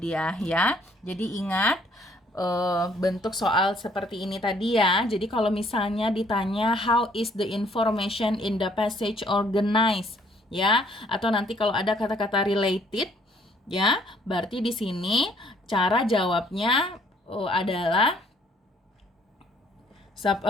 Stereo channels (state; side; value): normal; both; correlation 0.63